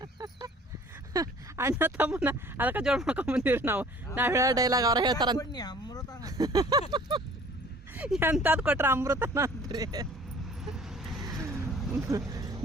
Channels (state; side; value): normal; both; correlation 0.51